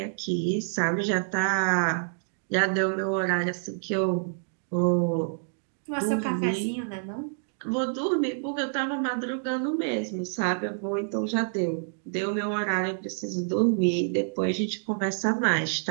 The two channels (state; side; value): silent; left; digital silence